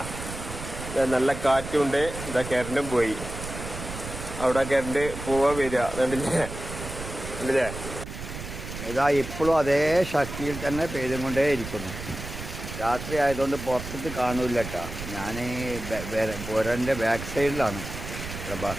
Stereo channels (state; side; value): noise; right; rumble, 9 dB below the sound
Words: നല്ല കാറ്റുണ്ട്. ഇതാ കറണ്ടും പോയി. അവിടെ കറണ്ട് പോവാ വരിക കണ്ടില്ലേ. ഇതാ ഇപ്പോഴും അതേ ശക്തിയിൽ തന്നെ പെയ്തുകൊണ്ടേ ഇരിക്കുന്നു. രാത്രി ആയതുകൊണ്ട് പുറത്തേക്ക് കാണൂല കേട്ടോ. ഞാൻ പുരൻ്റെ ബാക്ക് സൈഡിലാണ് ഇവിടെ